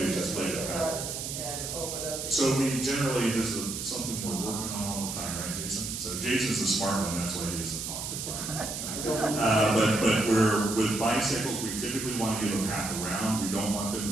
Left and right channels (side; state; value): right; noise; hiss, 5 dB below the sound